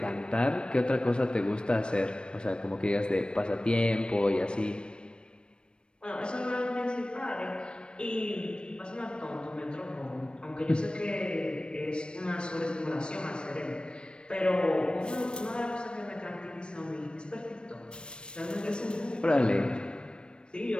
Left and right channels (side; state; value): right; late; 0.055 ms